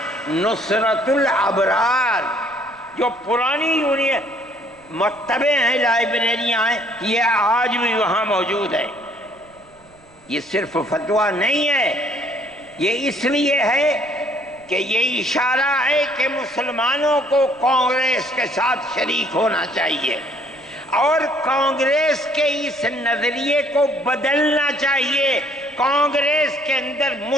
نصرت الابرار، جو پرانی یونین مکتبیں ہیں، لائبریریاں ہیں، یہ آج بھی وہاں موجود ہے۔ یہ صرف فتویٰ نہیں ہے، یہ اس لیے ہے کہ یہ اشارہ ہے کہ مسلمانوں کو کانگریس کے ساتھ شریک ہونا چاہیے اور کانگریس کے اس نظریے کو بدلنا چاہیے۔ کانگریس کے اندر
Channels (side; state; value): right; noise; rumble, 29 dB below the sound